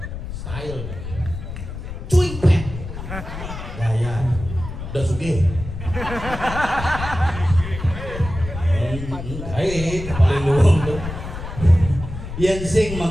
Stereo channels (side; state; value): left; noise; rumble, 8 dB below the sound